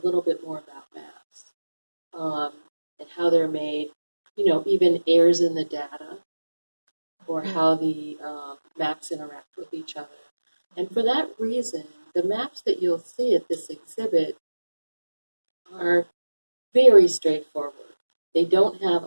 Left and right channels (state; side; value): inverted; both; correlation -1.00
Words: little bit more about maps and how they're made, even errors in the data, or how the maps interact with each other. And for that reason, the maps that you'll see at this exhibit are very straightforward. They don't have